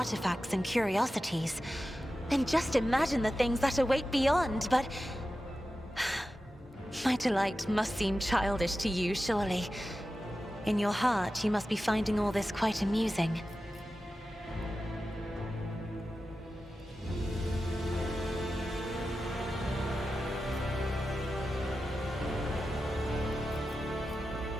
and curiosities. And just imagine the things that await beyond, but my delight must seem childish to you, surely. In your heart, you must be finding all this quite amusing.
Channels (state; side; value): normal; both; correlation 0.93